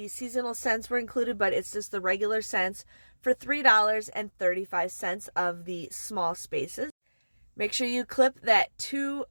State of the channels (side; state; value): both; inverted; correlation -1.00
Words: seasonal scents were included, but it's just the regular scents for $3.35 of the small spaces. Make sure you clip that